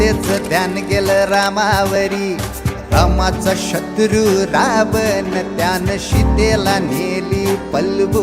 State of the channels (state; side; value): identical; both; correlation 1.00